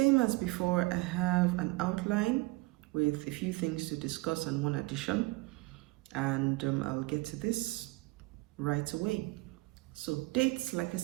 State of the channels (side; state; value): left; quieter; 22.5 dB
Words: as before, I have an outline with a few things to discuss and one addition. And I'll get to this right away. So dates, like I